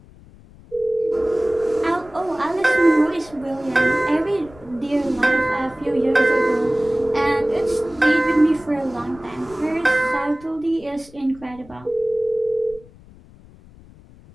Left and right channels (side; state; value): left; noise; rumble, 23 dB below the sound